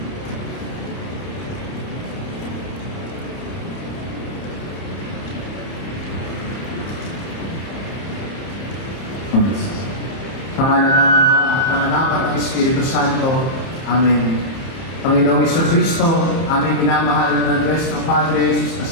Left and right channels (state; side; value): late; right; 30 ms